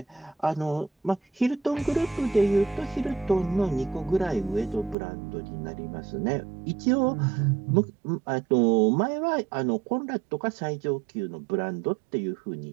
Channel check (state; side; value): drops out; left; at 5.0 s